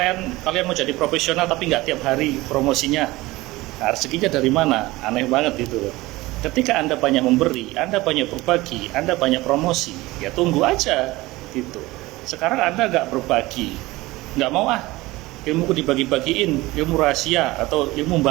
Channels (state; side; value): quieter; left; 19.7 dB